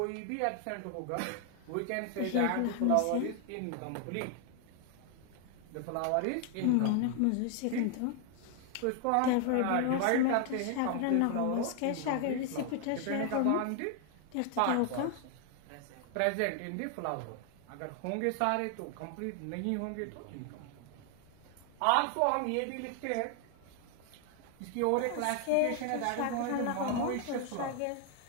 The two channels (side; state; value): both; different; correlation 0.00